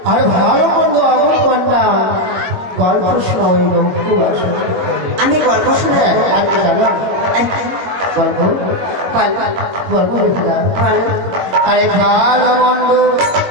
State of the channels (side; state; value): left; late; 22 ms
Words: আর ভালো মন্দ আমার কন্যা গল্প শোনা। আমি গল্প শুনে জানো গল্প বল গল্প বেহুলা বল আরে ভালো মন্দ